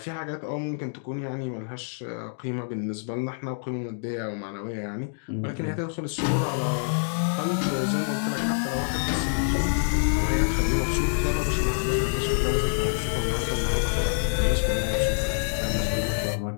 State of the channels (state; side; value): silent; right; digital silence